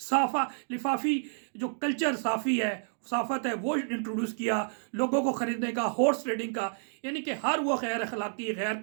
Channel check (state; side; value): silent; left; digital silence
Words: لفافی جو کلچر صافی ہے، صافت ہے وہ انٹروڈیوس کیا، لوگوں کو خریدنے کا، ہارس ٹریڈنگ کا، یعنی کہ ہر وہ غیر اخلاقی، غیر